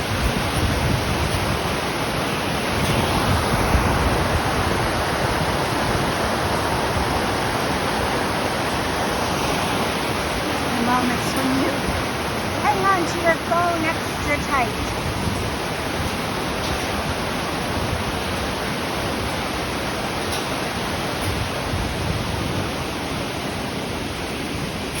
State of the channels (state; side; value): identical; both; correlation 1.00